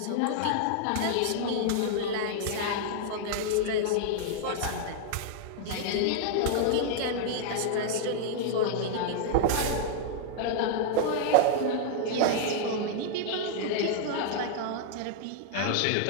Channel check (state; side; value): different; both; correlation -0.01